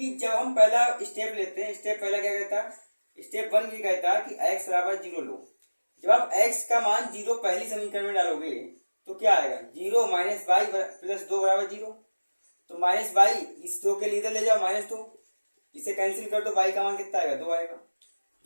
जब हम पहला स्टेप लेते हैं, स्टेप पहला क्या कहता है, स्टेप 1 ये कहता है कि x बराबर 0 लो। जब आप x का मान 0 पहली समीकरण में डालोगे तो क्या आएगा, 0 माइनस वाई प्लस 2 बराबर 0। तो माइनस वाई इस 2 के लिए इधर ले जाओ -2, इसे कैंसिल कर दो, y का मान कितना आएगा 2 आएगा।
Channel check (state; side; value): inverted; both; correlation -1.00